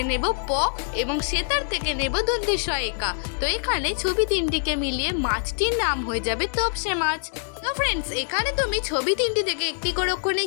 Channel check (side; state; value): right; silent; 62 dB below the other